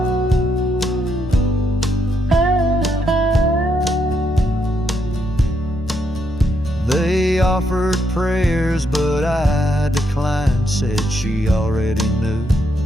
They offered prayers, but I declined, said she already knew.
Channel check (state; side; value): normal; both; correlation 0.77